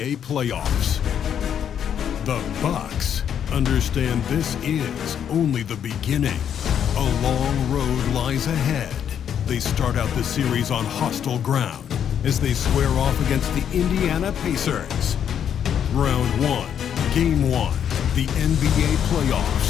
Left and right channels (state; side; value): quieter; right; 8.8 dB